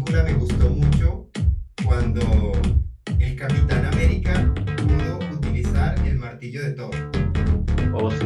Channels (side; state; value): both; identical; correlation 1.00